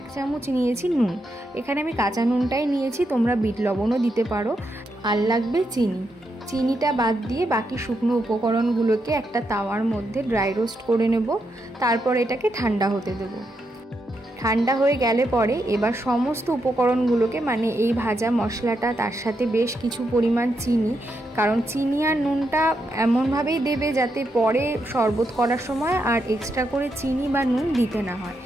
চামচ নিয়েছি নুন। এখানে আমি কাঁচা নুনটাই নিয়েছি, তোমরা বিট লবণও দিতে পারো। আর লাগবে চিনি। চিনিটা বাদ দিয়ে বাকি শুকনো উপকরণগুলোকে একটা তাওয়ার মধ্যে ড্রাই রোস্ট করে নেব। তারপর এটাকে ঠান্ডা হতে দেব। ঠান্ডা হয়ে গেলে পরে এবার সমস্ত উপকরণগুলোকে, মানে এই ভাজা মশলাটা, তার সাথে বেশ কিছু পরিমাণ চিনি, কারণ চিনি আর নুনটা এমনভাবেই দেবে যাতে পরে শরবত করার সময় আর এক্সট্রা করে চিনি বা নুন দিতে না হয়।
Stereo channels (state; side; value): normal; both; correlation 0.82